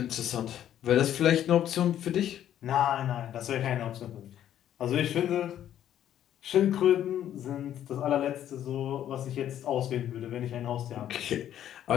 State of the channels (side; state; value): right; quieter; 11.0 dB